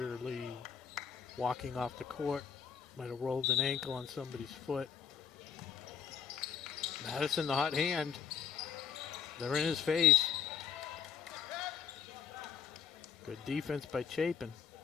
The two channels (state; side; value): quieter; right; 7.7 dB